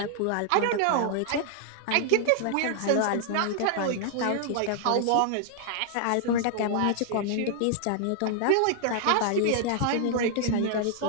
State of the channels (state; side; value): different; both; correlation 0.00